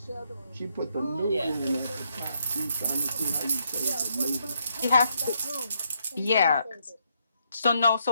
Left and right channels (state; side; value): inverted; both; correlation -0.75